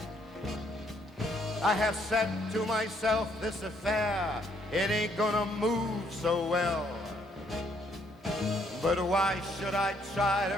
I have said to myself, this affair, it ain't gonna move so well. But why should I try to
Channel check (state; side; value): normal; both; correlation 0.69